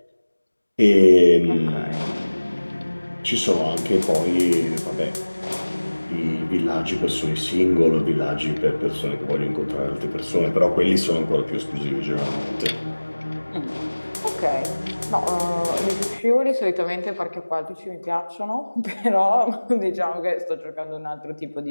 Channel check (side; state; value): both; inverted; correlation -1.00